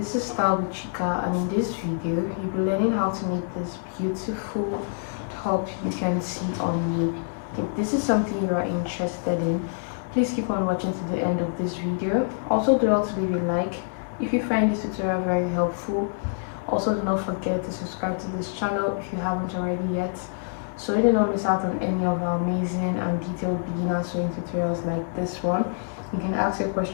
is Style with Chika, and in this video you'll be learning how to make this beautiful top you can see on me. If this is something you are interested in, please keep on watching to the end of this video. Also, do not leave a like if you find this tutorial very helpful. Also, do not forget to subscribe to this channel if you haven't already yet, so you do not miss out on any of our amazing and detailed beginner sewing tutorials like this one. You can ask your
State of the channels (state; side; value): silent; right; digital silence